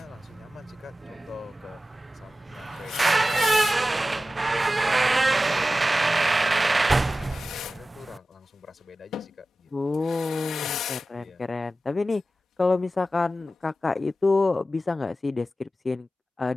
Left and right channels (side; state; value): both; normal; correlation 0.94